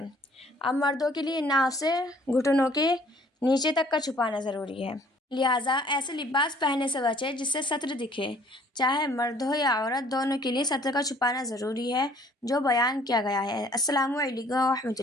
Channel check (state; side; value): normal; both; correlation 0.57